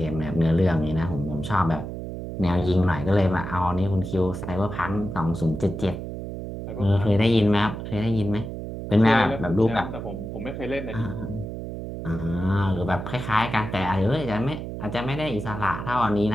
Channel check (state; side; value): noise; right; hum, 7 dB below the sound